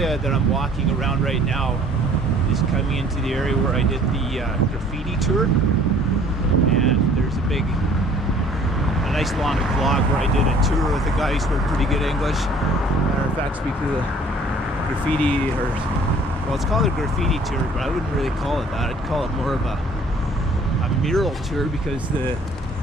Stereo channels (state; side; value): normal; both; correlation 0.55